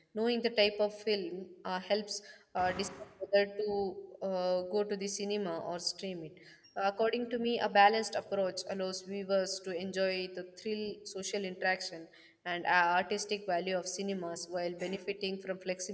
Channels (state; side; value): identical; both; correlation 1.00